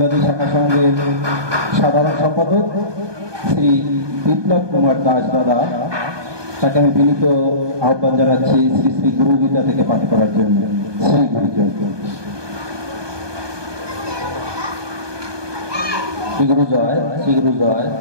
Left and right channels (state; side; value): late; left; 1.2 ms